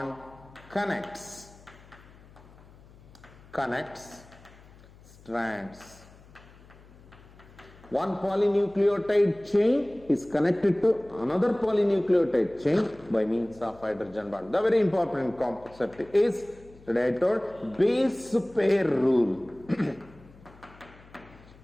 connects strands. One polynucleotide chain is connected to another polynucleotide chain by means of hydrogen bond. The very important concept is, today I told, base pair rule.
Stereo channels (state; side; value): noise; left; hum, 23 dB below the sound